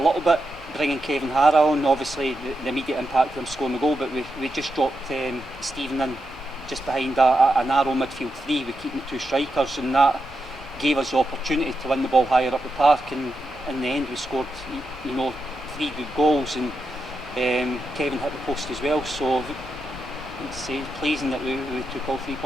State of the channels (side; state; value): both; normal; correlation 0.86